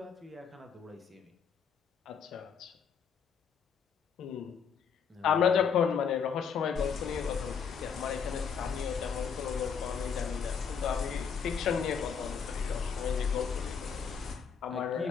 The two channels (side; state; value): right; quieter; 6.7 dB